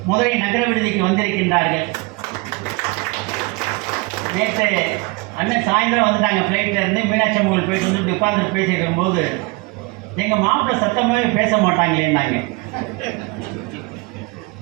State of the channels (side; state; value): left; quieter; 25.8 dB